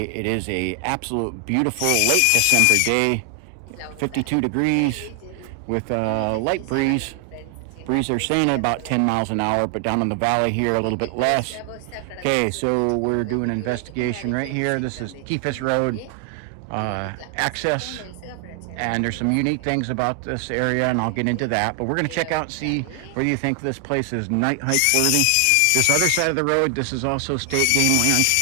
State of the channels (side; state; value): both; different; correlation 0.00